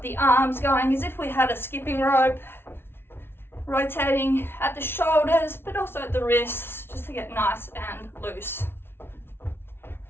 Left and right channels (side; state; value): right; late; 0.11 ms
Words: the arms going as if we had a skipping rope. Rotating at the shoulders, but also at the wrists, just to get nice and loose.